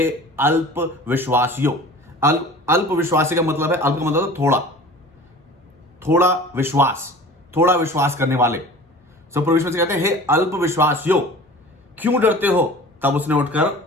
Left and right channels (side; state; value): both; normal; correlation 0.41